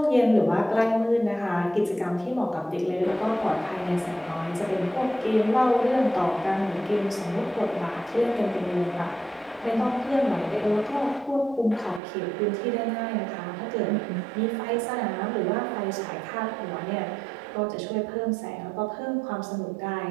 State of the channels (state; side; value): drops out; left; at 12.0 s